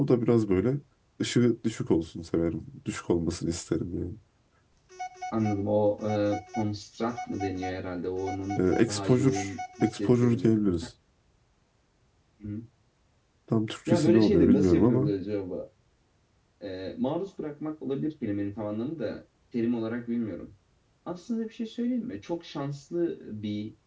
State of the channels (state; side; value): identical; both; correlation 1.00